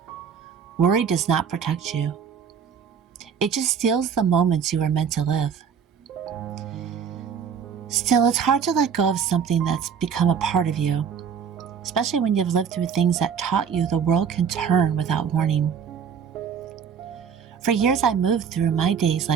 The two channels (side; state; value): left; quieter; 7.2 dB